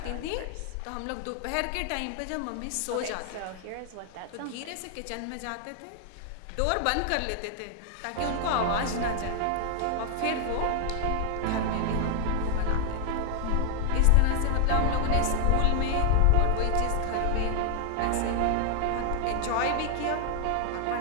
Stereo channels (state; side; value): different; both; correlation 0.00